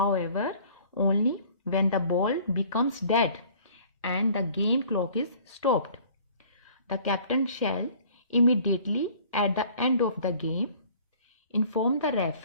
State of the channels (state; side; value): inverted; both; correlation -0.52